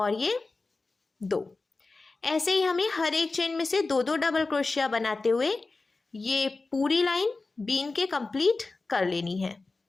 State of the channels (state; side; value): quieter; right; 3.6 dB